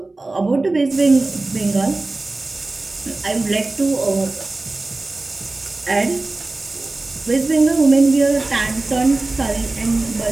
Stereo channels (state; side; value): quieter; left; 3.2 dB